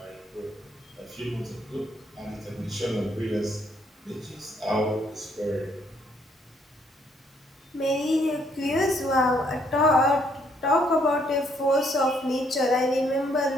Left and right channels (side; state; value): both; normal; correlation 0.68